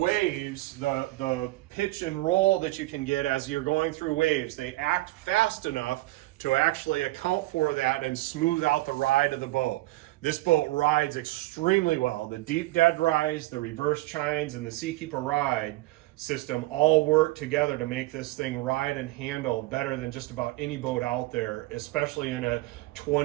the pitch and roll that you can get as you're going through waves. They act fast enough to actually account for that and smooth out the ride of the boat. This boat rides extremely well. The deep dead rise, the reverse chines, and the Seakeeper ride system all work together to make this thing ride and handle better than just about any boat out there, especially in a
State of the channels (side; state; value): left; quieter; 19.2 dB